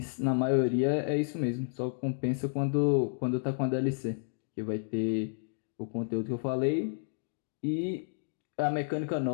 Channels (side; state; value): right; silent; digital silence